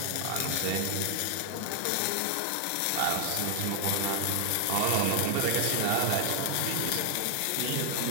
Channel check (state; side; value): different; both; correlation 0.00